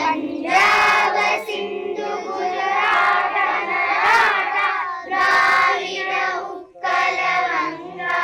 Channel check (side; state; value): both; identical; correlation 1.00